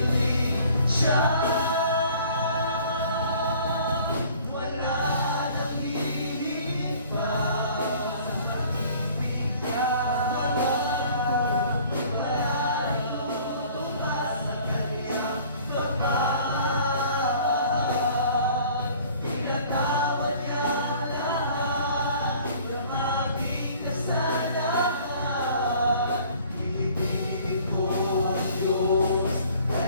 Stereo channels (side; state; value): both; inverted; correlation -0.52